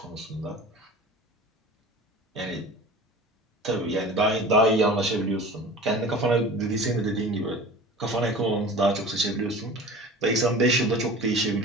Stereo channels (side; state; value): both; normal; correlation 0.39